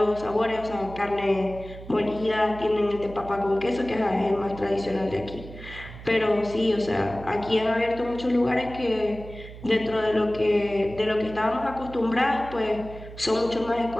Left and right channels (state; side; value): noise; right; hum, 14 dB below the sound